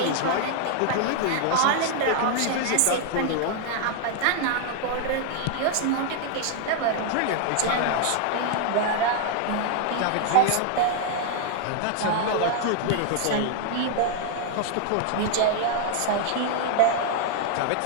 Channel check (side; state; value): both; different; correlation 0.00